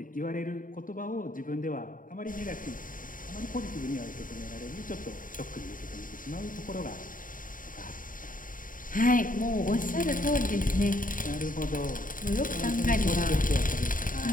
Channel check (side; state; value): right; late; 0.39 ms